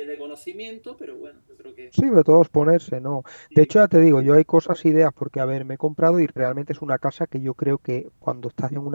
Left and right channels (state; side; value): inverted; both; correlation -1.00